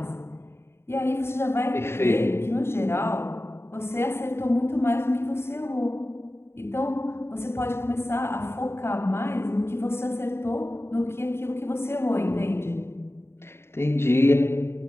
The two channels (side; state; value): right; late; 0.12 ms